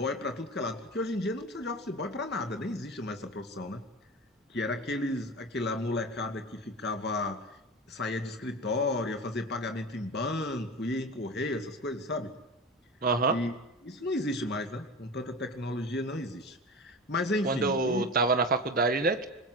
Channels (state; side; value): normal; both; correlation 0.30